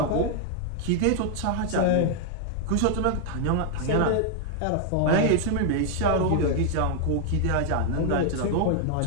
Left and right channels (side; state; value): both; different; correlation 0.00